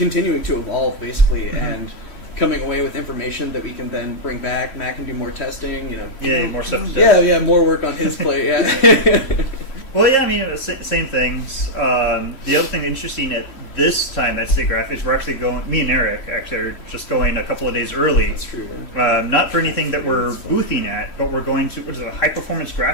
to evolve basically and coming away with information that we can then bring back. Matt can do more testing, you know. Yeah, more stuff to test. Yeah, more work on his plate, yeah. Well, yeah, I mean, same things. The other thing interesting at this time at Siggraph is we're actually going, me and Eric actually are just going a couple of days early. That's true, man. Not for anything that we're boothing at, but we're going to, what is it, high performance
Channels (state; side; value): late; right; 3.1 ms